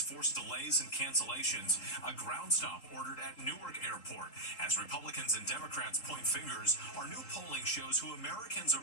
force delays and cancellations. A ground stop ordered at Newark Airport. As Republicans and Democrats point fingers, our new polling shows who Americans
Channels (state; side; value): late; right; 3.8 ms